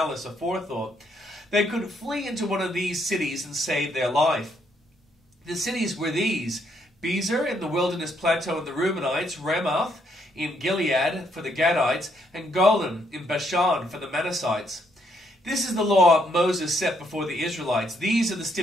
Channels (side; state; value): both; normal; correlation 0.73